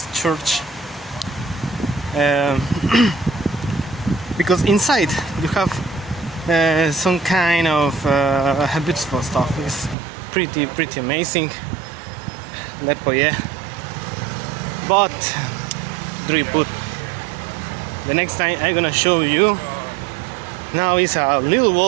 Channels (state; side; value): drops out; left; at 10.0 s